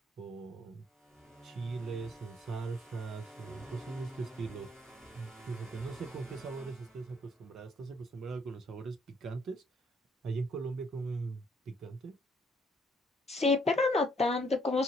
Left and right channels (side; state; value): both; normal; correlation 0.67